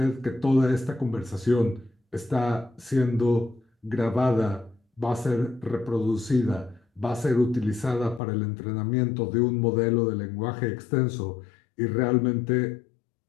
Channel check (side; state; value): right; drops out; at 8.2 s